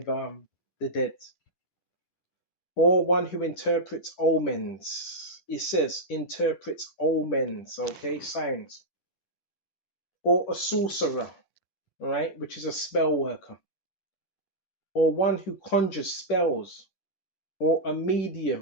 the dead. Or one who interprets omens. It says interprets omens, okay, signs. Or a sorcerer, right, which is a spell worker. Or one who conjures spells. Or a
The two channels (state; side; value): late; right; 10 ms